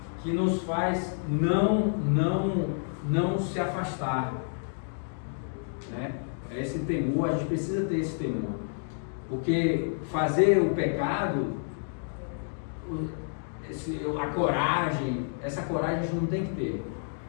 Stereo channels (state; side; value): silent; right; digital silence